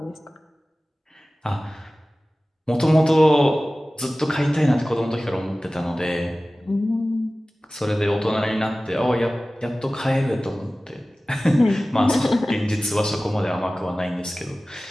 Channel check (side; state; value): both; normal; correlation 0.97